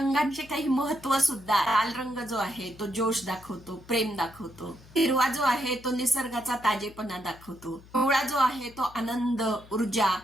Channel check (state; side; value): noise; left; hum, 22 dB below the sound